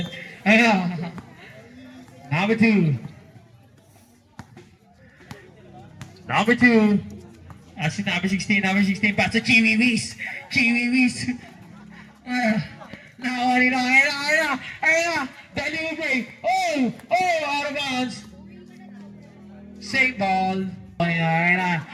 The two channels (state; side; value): identical; both; correlation 1.00